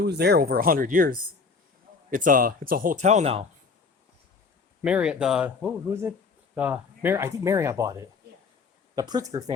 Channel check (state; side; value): quieter; right; 4.8 dB